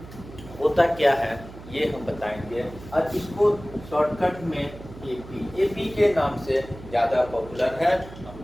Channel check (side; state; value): right; noise; hum, 16 dB below the sound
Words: होता क्या है ये हम बताएंगे, और इसको शॉर्टकट में एपी के नाम से ज़्यादा पॉपुलर है,